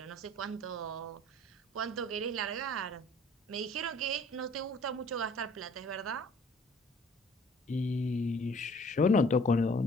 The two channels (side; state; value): both; normal; correlation 0.54